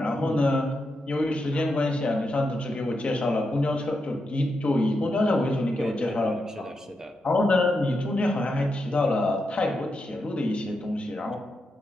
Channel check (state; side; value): normal; both; correlation 0.86